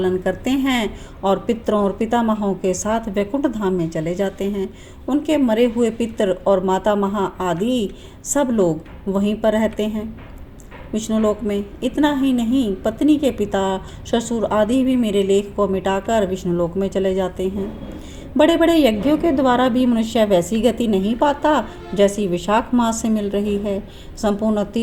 करते हैं और पितरों और पितामहों के साथ वैकुंठ धाम में चले जाते हैं। उनके मरे हुए पितर और माता महा आदि सब लोग वहीं पर रहते हैं विष्णुलोक में। इतना ही नहीं, पत्नी के पिता ससुर आदि भी मेरे लेख को मिटाकर विष्णुलोक में चले जाते हैं। बड़े बड़े यज्ञों के द्वारा भी मनुष्य वैसी गति नहीं पाता जैसी विशाख मास से मिल रही है। संपूर्ण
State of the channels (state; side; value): identical; both; correlation 1.00